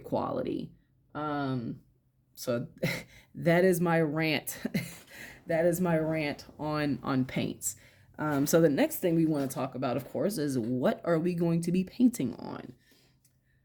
quality. So that is my rant. That is my rant on paints. So the next thing we want to talk about, of course, is what are we going to be painting on?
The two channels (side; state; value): both; identical; correlation 1.00